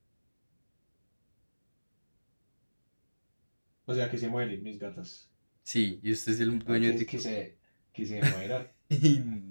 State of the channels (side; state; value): both; inverted; correlation -1.00